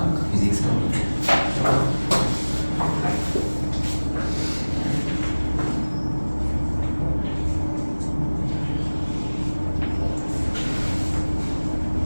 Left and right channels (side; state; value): both; inverted; correlation -1.00